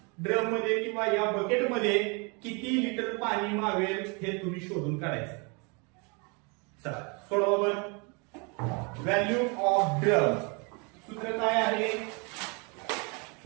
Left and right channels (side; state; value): left; quieter; 32.1 dB